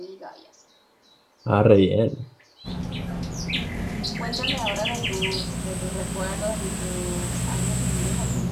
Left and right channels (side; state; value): both; identical; correlation 1.00